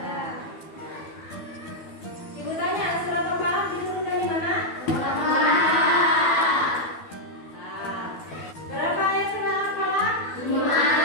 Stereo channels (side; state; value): right; late; 12 ms